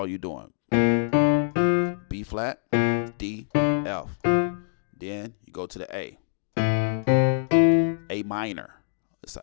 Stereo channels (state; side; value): silent; right; digital silence